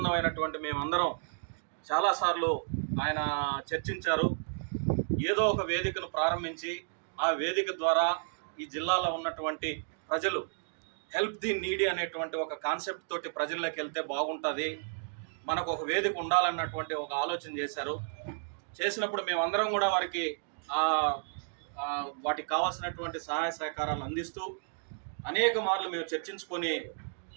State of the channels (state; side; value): silent; left; digital silence